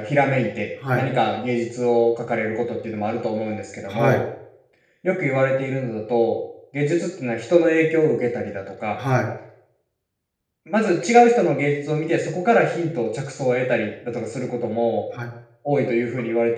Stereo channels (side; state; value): both; identical; correlation 1.00